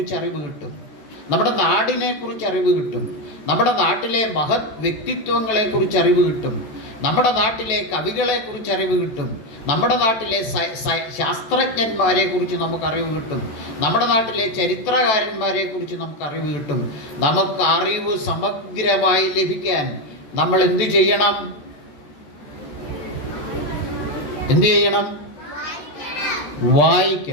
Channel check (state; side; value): late; right; 14 ms